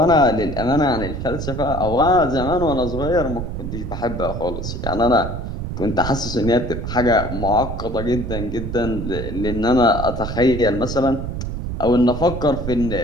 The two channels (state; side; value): noise; right; rumble, 5 dB below the sound